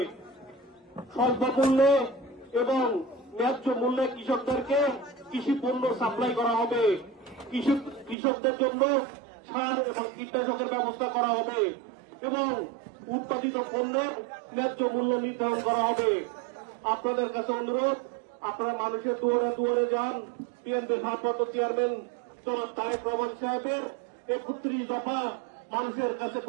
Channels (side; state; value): left; drops out; at 8.2 s